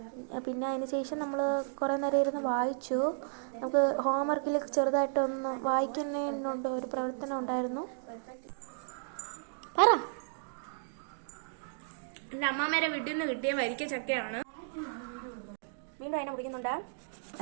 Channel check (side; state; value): left; silent; digital silence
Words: പിന്നെ അതിന് ശേഷം നമ്മൾ കുറേ നേരം ഇരുന്ന് വായിച്ചു. നമുക്ക് ഹോംവർക്കിൽ ചെറുതായിട്ടൊന്ന് വായിക്കുന്നതിനുണ്ട് ഒരു പ്രവർത്തനം ഉണ്ടായിരുന്നു. പറ. എൻ്റെ അമ്മാമ്മേരെ വീട്ടിൽ നിന്ന് കിട്ടിയ വരിക്ക ചക്കയാണ്. വീണ്ടും അതിനെ മുടിക്കുന്നുണ്ട്.